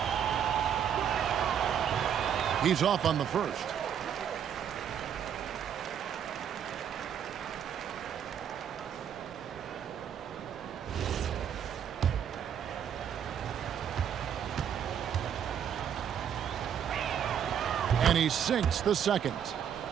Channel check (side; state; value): left; quieter; 8.7 dB